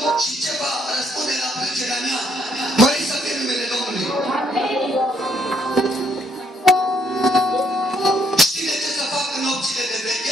și ce va răspunde la plângerea mea. Mărit să fie numele Domnului. Știți ce să fac în nopțile de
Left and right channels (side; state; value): both; normal; correlation 0.71